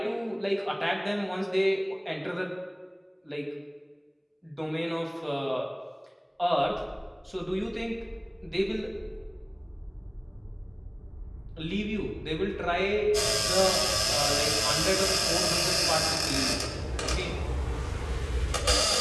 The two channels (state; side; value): identical; both; correlation 1.00